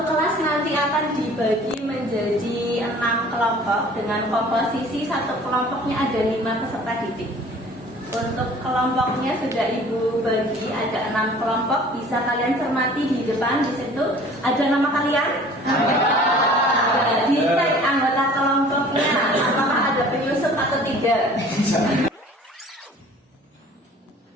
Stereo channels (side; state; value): both; normal; correlation 0.49